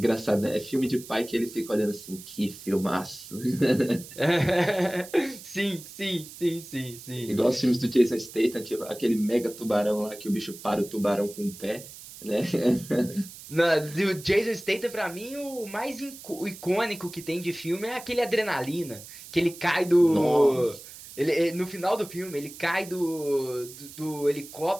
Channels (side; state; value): right; noise; hiss, 16 dB below the sound